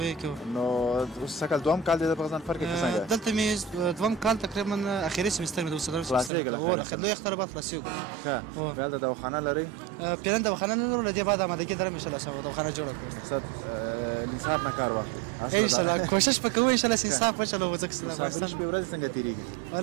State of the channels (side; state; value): left; drops out; at 6.3 s